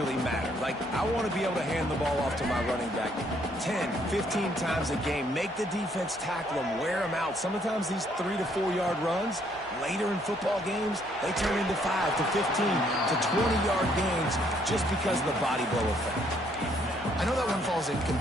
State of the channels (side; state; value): both; normal; correlation 0.68